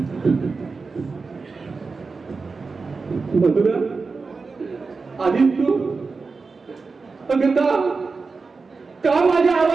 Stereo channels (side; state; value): left; quieter; 4.4 dB